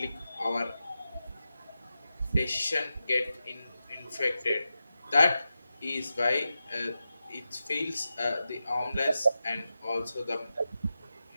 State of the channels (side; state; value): both; inverted; correlation -0.91